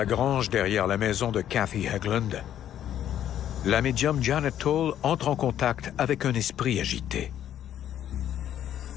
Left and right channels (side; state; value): right; quieter; 10.8 dB